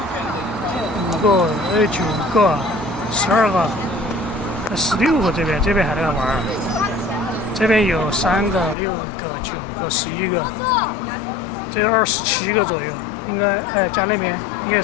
5个、9个、12个、16个，这边还在玩，这边有3个、6个、9个、11个，这有27个左右，应该加那边应该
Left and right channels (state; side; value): drops out; right; at 8.8 s